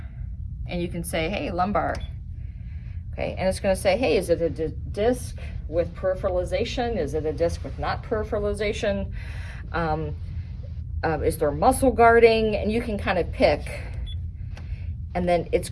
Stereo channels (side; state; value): both; identical; correlation 1.00